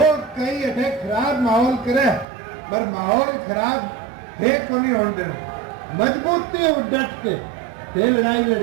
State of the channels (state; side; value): drops out; left; at 2.2 s